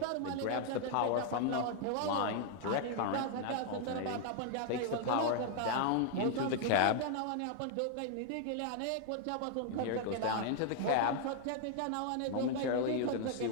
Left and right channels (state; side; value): different; both; correlation 0.00